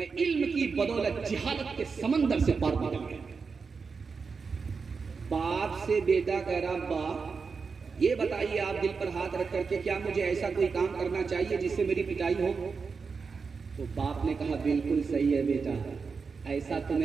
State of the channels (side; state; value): left; quieter; 5.1 dB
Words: इल्म की बदौलत जिहालत के समंदर से पार निकल गया। बाप से बेटा कह रहा, बाप ये बताइए आप दिल पर हाथ रख करके, क्या मुझे ऐसा कोई काम करना चाहिए जिससे मेरी पिटाई हो? तो बाप ने कहा बिल्कुल सही है बेटा, ऐसा